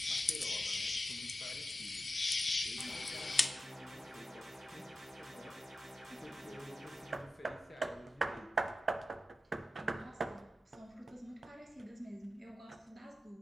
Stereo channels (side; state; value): both; normal; correlation 0.92